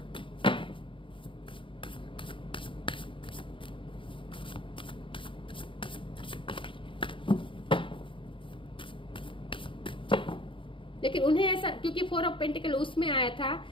लेकिन उन्हें ऐसा, क्योंकि 4 ऑफ पेंटिकल उसमें आया था,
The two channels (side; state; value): right; late; 0.25 ms